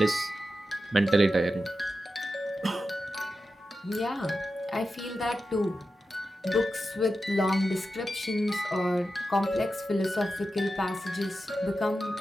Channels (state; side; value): normal; both; correlation 0.91